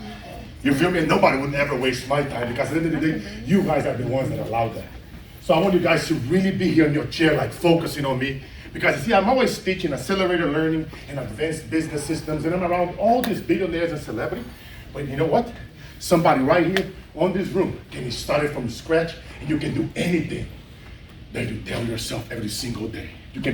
You feel me? Nobody would ever waste my time because at the end of the day, you guys are the ones that allowed that. So I want you guys to really be here in your chair, like focusing on me. Because you see, I'm always teaching accelerator learning and advanced business systems, and I'm around all these billionaires and celebrities. But you know what? Somebody right here on this room can be started from scratch, and you can do anything that you tell yourself every single day. You can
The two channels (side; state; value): both; identical; correlation 1.00